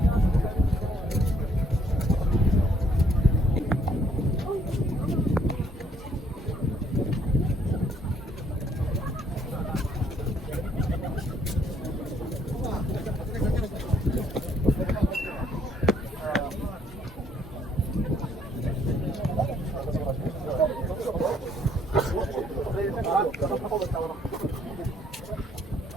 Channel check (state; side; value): normal; both; correlation 0.66